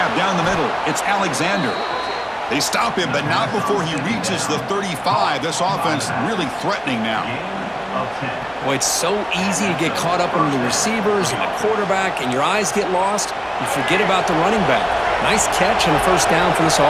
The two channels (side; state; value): both; identical; correlation 1.00